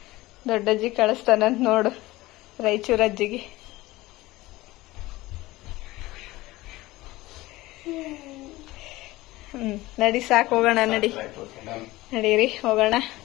ದೊಡ್ಡಜ್ಜಿ ಕಳಿಸ್ತಾನಂತ ನೋಡು, ರಾಯಚೂರಜ್ಜಿಗೆ. ನಡಿ ಸಾಕು, ಹೋಗೋಣ. ನಡೀರಿ ಹೋಗೋಣ.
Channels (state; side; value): quieter; right; 19.0 dB